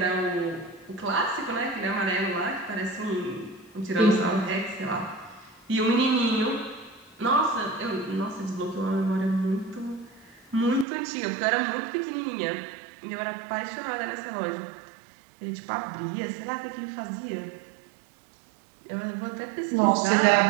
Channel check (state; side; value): drops out; left; at 10.9 s